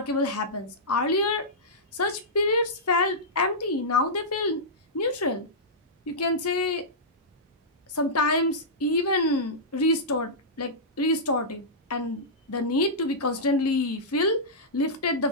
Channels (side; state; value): both; normal; correlation -0.14